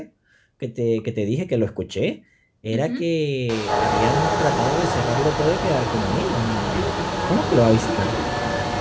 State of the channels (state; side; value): identical; both; correlation 1.00